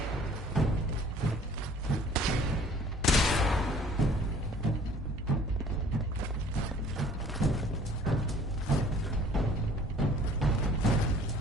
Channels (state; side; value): normal; both; correlation 0.53